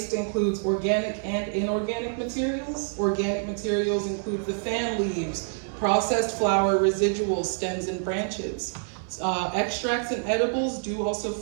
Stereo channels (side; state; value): left; silent; digital silence